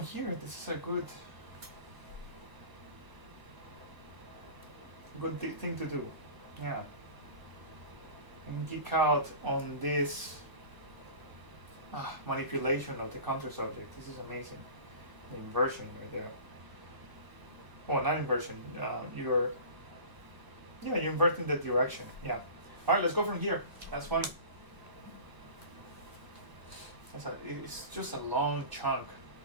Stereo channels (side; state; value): left; late; 1.0 ms